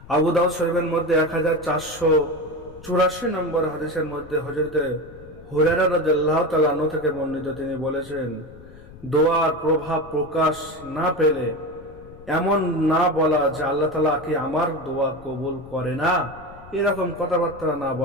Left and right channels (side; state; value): left; noise; rumble, 19 dB below the sound